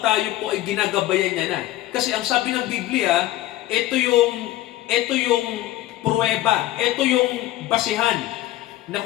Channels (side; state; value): right; quieter; 15.5 dB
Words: tayo po ay ginagabayan niya na. Kasi ang sabi ng Biblia, ito yung pruweba, ito yung basihan na